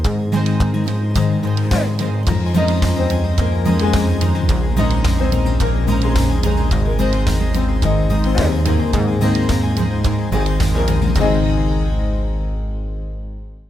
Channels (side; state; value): both; normal; correlation 0.87